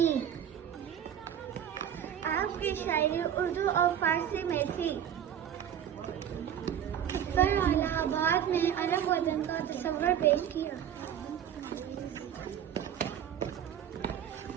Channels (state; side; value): quieter; left; 9.6 dB